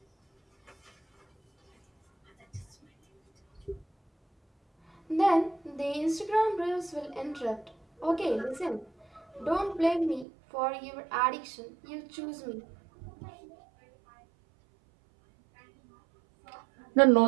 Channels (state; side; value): drops out; left; at 10.2 s